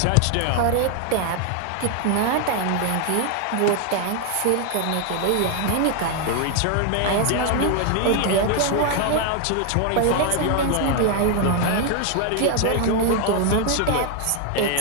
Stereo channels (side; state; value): both; different; correlation 0.00